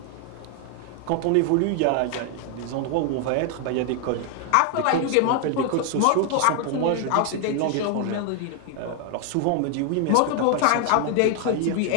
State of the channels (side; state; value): both; different; correlation 0.00